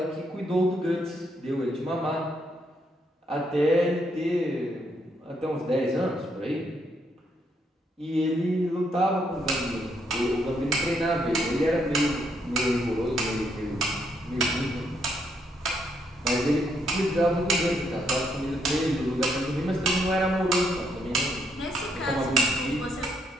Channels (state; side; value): normal; both; correlation 0.75